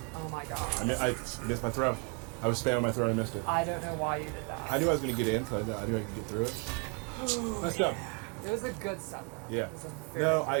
Oh my god. I missed my throw. I was spamming my throw and I missed it. I don't know why you did that. I knew I was going to get in, so I knew I could get through it. Nice job. It was a good set, though. Yeah. It was a very No,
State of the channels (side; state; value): left; quieter; 32.4 dB